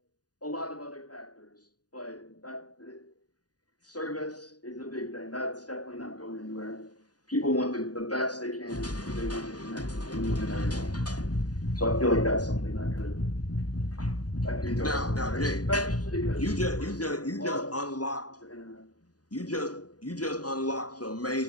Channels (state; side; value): late; right; 0.68 ms